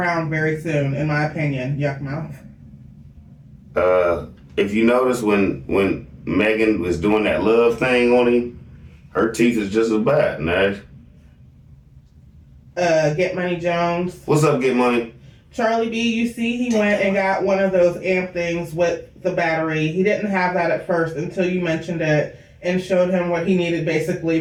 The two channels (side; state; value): both; identical; correlation 1.00